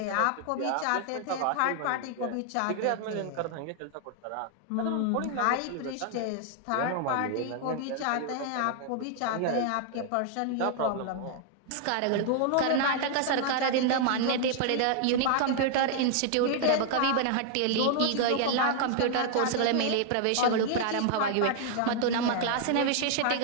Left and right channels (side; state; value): both; different; correlation 0.00